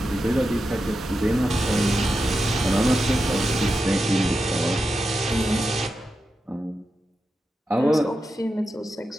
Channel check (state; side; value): normal; both; correlation 0.89